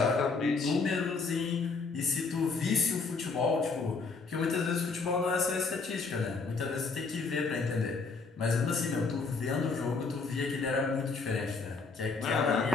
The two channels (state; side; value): quieter; right; 4.4 dB